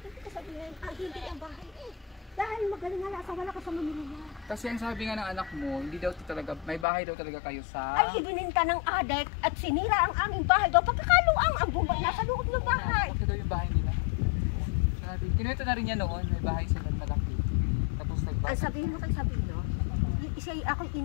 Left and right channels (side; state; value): right; drops out; at 6.9 s